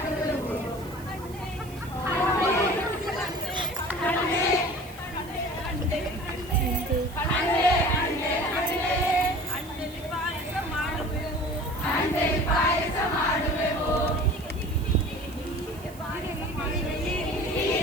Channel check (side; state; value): right; noise; hiss, 20 dB below the sound